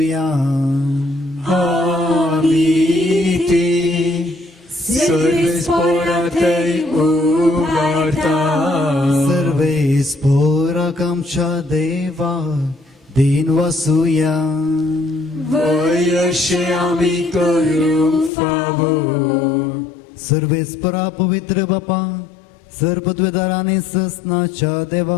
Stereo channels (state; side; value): drops out; right; at 18.3 s